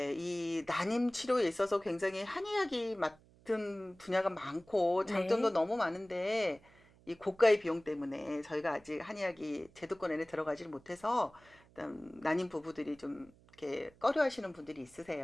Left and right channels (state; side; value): noise; right; hum, 27 dB below the sound